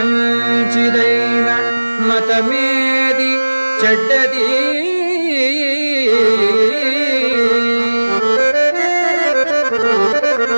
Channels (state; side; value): inverted; both; correlation -1.00